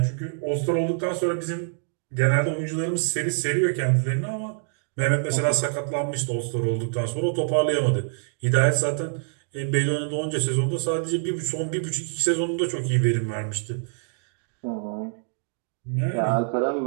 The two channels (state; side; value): silent; left; digital silence